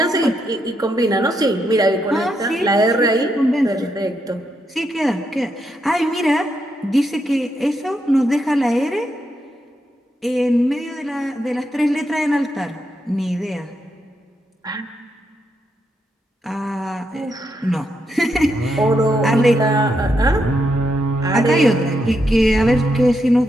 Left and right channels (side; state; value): both; normal; correlation 0.81